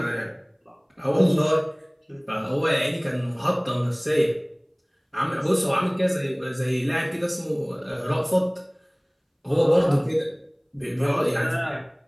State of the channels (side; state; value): both; identical; correlation 1.00